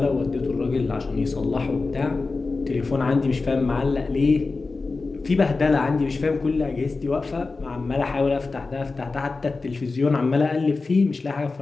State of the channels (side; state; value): right; quieter; 3.9 dB